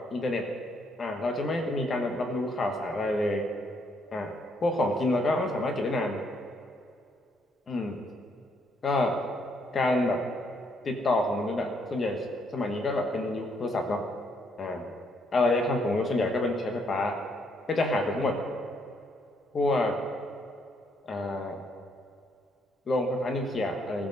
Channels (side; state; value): both; normal; correlation 0.72